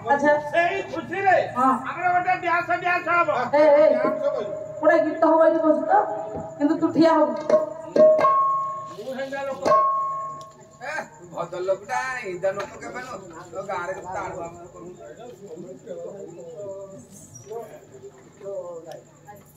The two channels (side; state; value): both; identical; correlation 1.00